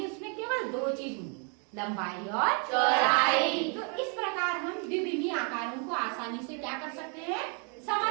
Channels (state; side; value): quieter; left; 38.1 dB